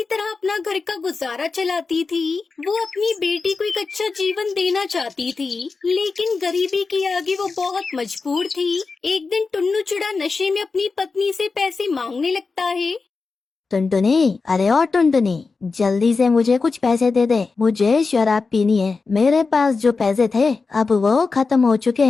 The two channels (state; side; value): quieter; right; 4.4 dB